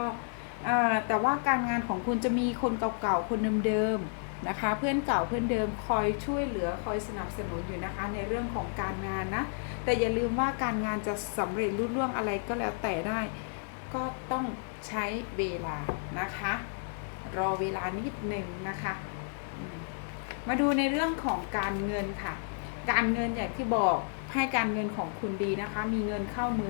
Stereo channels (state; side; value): silent; right; digital silence